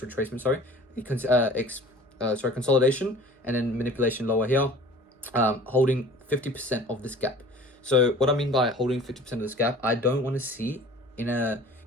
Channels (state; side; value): normal; both; correlation 0.45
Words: consolidation, and then manipulation lower here, holding 50% of this gap. So what I mean by holding 50% of this gap, I don't want to see